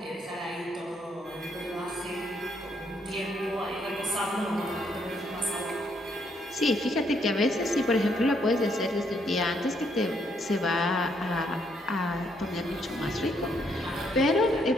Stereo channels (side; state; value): both; normal; correlation 0.73